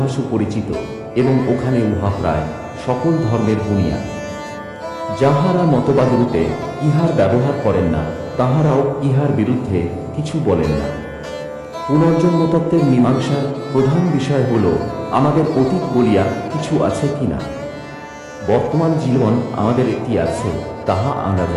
সুপরিচিত এবং ওখানে উহা প্রায় সকল ধর্মের বুনিয়াদ। যাহারা মতবাদরূপে ইহার ব্যবহার করেন না, তাহারাও ইহার বিরুদ্ধে কিছু বলেন না। পুনর্জন্মতত্ত্বের মীমাংসার প্রধান বিষয় হল আমাদের অতীত বলিয়া কিছু আছে কিনা। বর্তমান জীবন আমাদের একটি আছে, তাহা আমরা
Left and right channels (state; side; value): identical; both; correlation 1.00